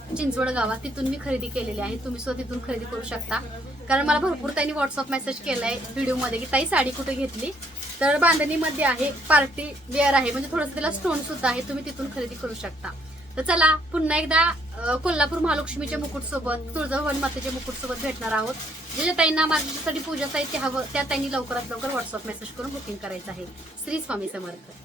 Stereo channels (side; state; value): both; normal; correlation 0.67